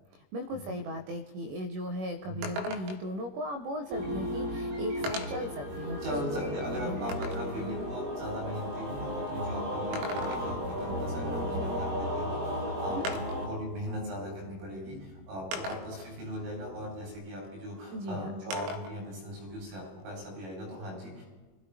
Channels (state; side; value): late; left; 21 ms